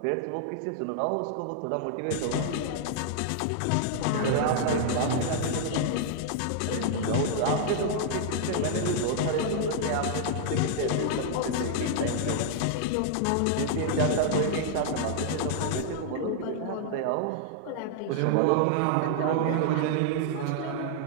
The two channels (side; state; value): both; different; correlation -0.01